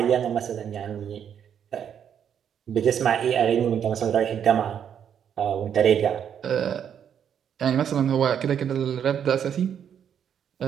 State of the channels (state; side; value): quieter; left; 8.5 dB